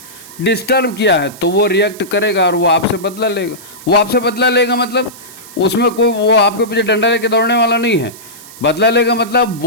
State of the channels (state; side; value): noise; right; hiss, 18 dB below the sound